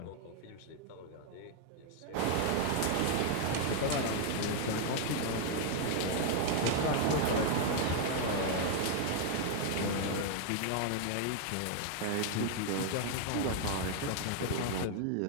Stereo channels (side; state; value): both; different; correlation 0.00